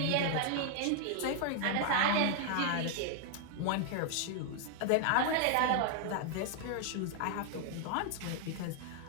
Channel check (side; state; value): both; different; correlation 0.00